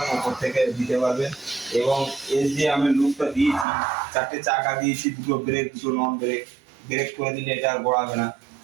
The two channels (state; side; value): drops out; left; at 3.7 s